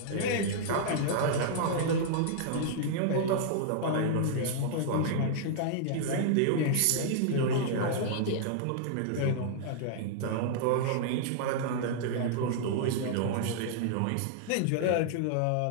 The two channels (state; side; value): different; both; correlation -0.01